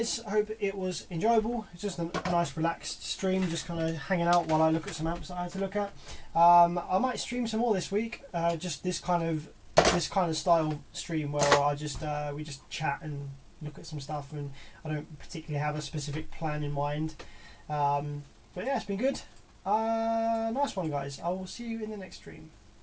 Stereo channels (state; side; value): identical; both; correlation 1.00